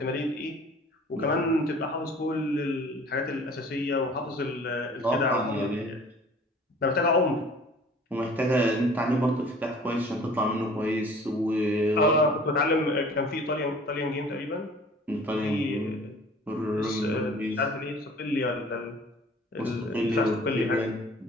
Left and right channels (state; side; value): normal; both; correlation 0.49